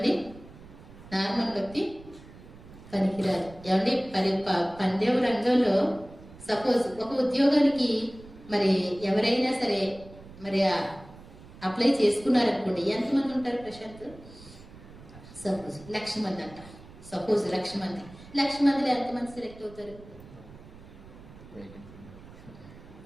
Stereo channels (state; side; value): noise; right; rumble, 19 dB below the sound